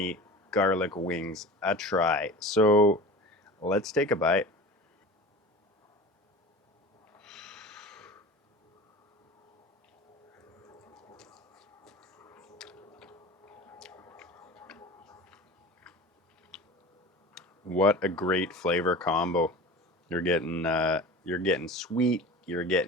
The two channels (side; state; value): both; normal; correlation 0.35